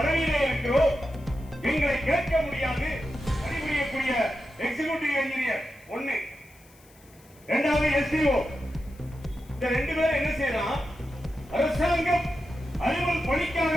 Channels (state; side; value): noise; left; hiss, 28 dB below the sound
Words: இருக்கிறோம், எங்களை கேட்க முடியாது. பணிபுரியக்கூடிய எக்ஸிகியூட்டிவ் இன்ஜினியர் ஒண்ணு, இரண்டாவது எஸ்டிஓ, இந்த ரெண்டு பேரும் என்ன செய்யலாம், அரசாங்கம் அலுவல்